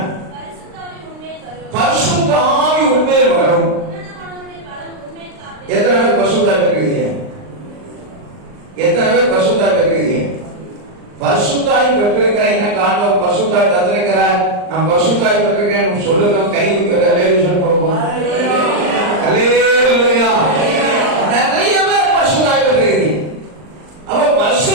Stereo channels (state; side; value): late; left; 39 ms